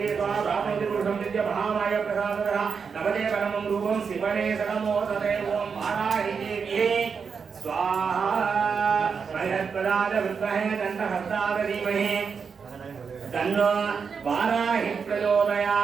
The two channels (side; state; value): left; quieter; 5.9 dB